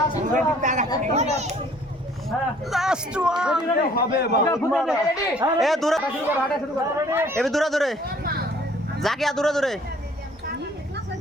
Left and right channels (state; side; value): normal; both; correlation 0.57